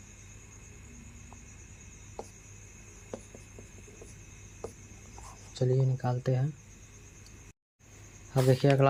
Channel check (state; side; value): identical; both; correlation 1.00